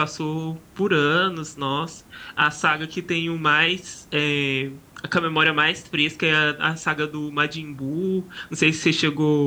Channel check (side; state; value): both; identical; correlation 1.00